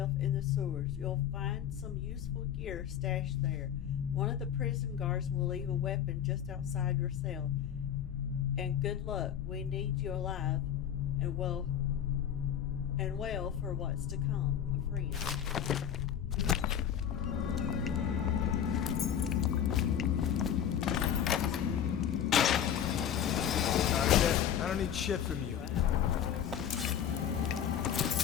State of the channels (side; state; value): right; quieter; 9.4 dB